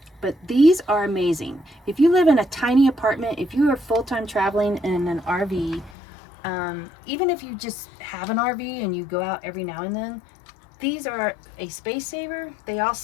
these are amazing. If you live in a tiny apartment, if you are full-time traveling in an RV, even if you just have an RV and you go out every now and then, these are a space saver. They all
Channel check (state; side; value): drops out; right; at 6.0 s